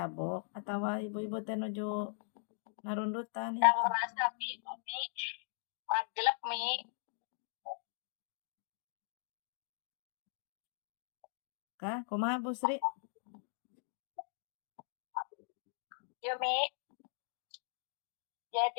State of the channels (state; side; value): silent; right; digital silence